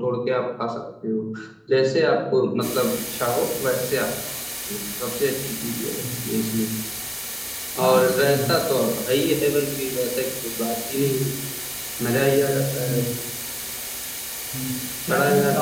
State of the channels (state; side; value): identical; both; correlation 1.00